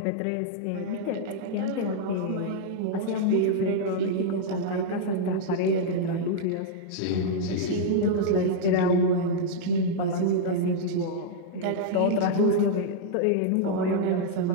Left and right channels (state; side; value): different; both; correlation -0.02